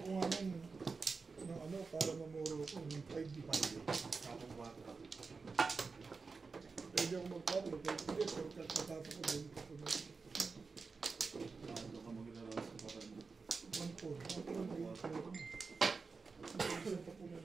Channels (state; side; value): quieter; left; 4.5 dB